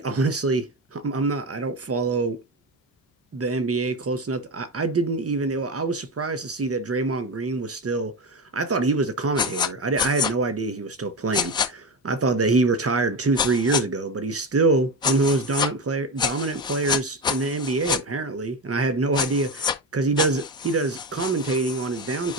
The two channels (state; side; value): normal; both; correlation 0.19